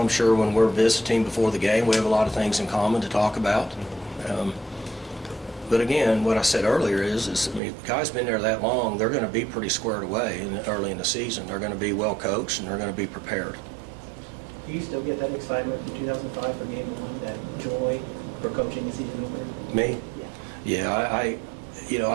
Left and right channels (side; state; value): left; drops out; at 7.6 s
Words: I'm sure when we're visiting before the game, we have a lot of things in common to talk about. But again, what I said earlier is if the guy's been there that long, they're going to be pretty squared away early in the season. They're going to be well coached, and they're going to be prepared. Do you still get that excitement from 2005 for game 1, that joy for coaching the season over? Me? Yeah,